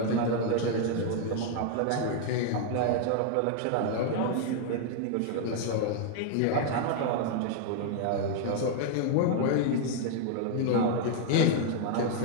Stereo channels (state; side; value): different; both; correlation 0.00